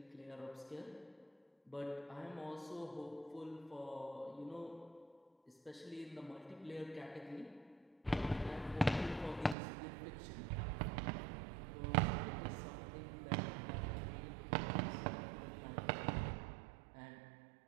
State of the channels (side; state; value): left; drops out; at 9.6 s